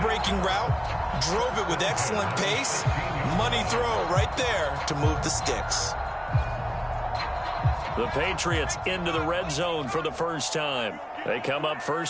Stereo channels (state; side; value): identical; both; correlation 1.00